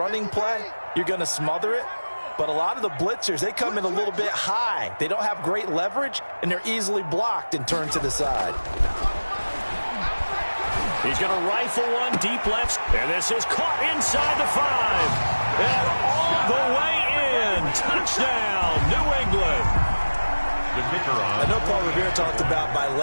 play, you're going to smother it. But a lot of the blitzers, they come in a little bit high. They don't have great leverage, and they're easily blocked and turned to the side. He's going to rifle one deep left. And this is caught inside the 5. And all the way in. Touchdown, New England. I know Paul Revere talked about by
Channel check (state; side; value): inverted; both; correlation -1.00